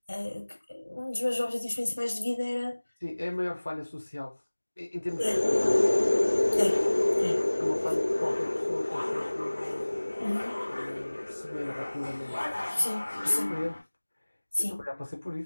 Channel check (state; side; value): inverted; both; correlation -1.00